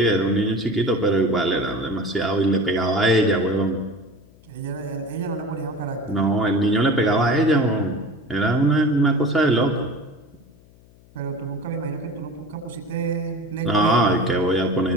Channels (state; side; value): noise; left; hum, 27 dB below the sound